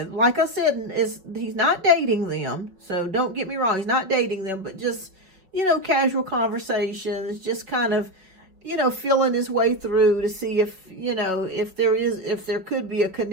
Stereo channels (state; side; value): late; left; 5.2 ms